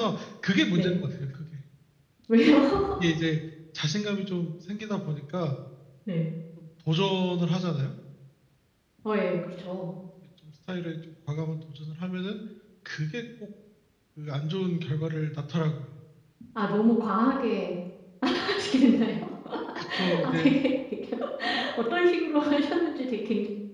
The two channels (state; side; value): identical; both; correlation 1.00